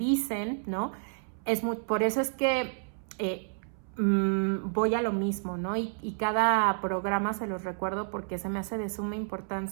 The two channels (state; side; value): silent; left; 58 dB below the other